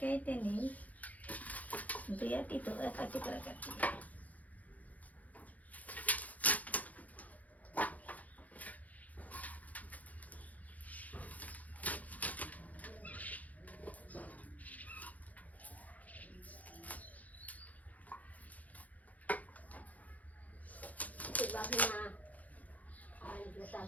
নেই, দুইটি তো একাটি করে কাটি।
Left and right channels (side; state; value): right; late; 0.075 ms